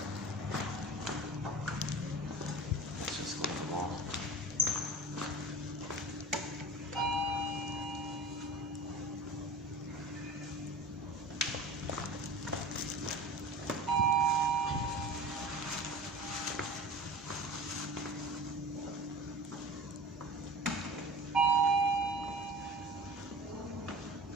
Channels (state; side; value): normal; both; correlation 0.37